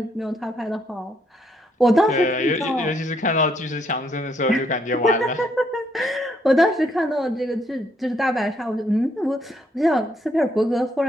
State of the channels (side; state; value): both; normal; correlation 0.72